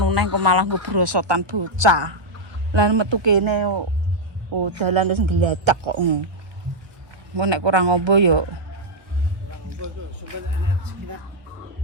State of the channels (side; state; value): left; late; 1.2 ms